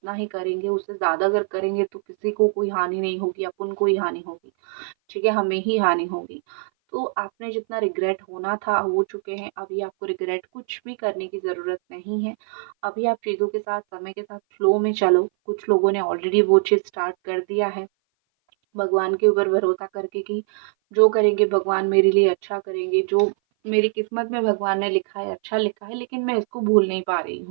ही करेंगे, उससे ज़्यादा अगर करेंगे तो किसी को कोई हानि नहीं होगी, अपन को ही हानि होगी। ठीक है, हमें ही हानि होगी। तो आपने जितना रिग्रेट होना था हो चुके हैं, अभी आपको रिग्रेट कुछ भी करने की ज़रूरत नहीं है। अभी आप चीज़ों के साथ, समय के साथ फ्लो में चलो। कुछ लोगों ने ऑलरेडी वो चीज़ स्टार्ट कर दिया है, भगवान के ऊपर भरोसा करके कि जो करेंगे भगवान मेरे लिए अच्छा करेंगे, जो मेरी किस्मत में भगवान ने लिखा है, अच्छा लिखा है, लेकिन मैं इसको भूल नहीं पा रही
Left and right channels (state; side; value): silent; left; 58 dB below the other